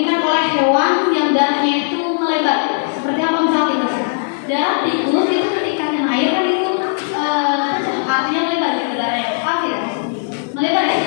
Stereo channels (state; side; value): silent; right; digital silence